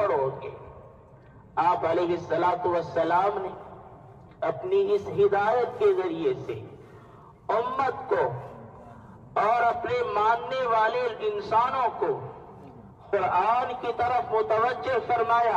گے۔ آپ علیہ الصلاۃ والسلام نے اپنی اس ہدایت کے ذریعے سے امت کو اور اپنے ماننے والے انسانوں کو قرآن کی طرف متوجہ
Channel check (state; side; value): identical; both; correlation 1.00